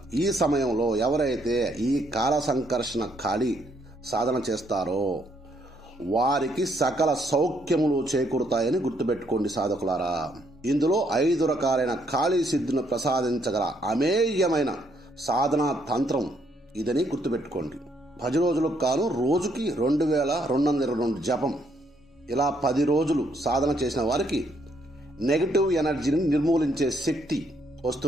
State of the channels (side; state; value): both; normal; correlation 0.71